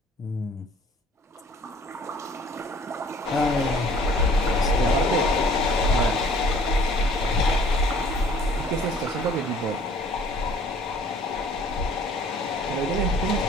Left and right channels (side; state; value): both; normal; correlation 0.54